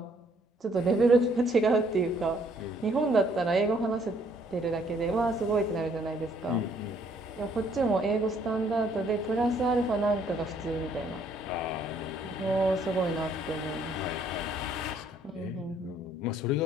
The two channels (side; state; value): both; normal; correlation 0.65